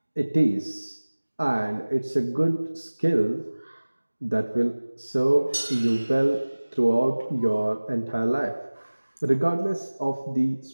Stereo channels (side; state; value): both; inverted; correlation -1.00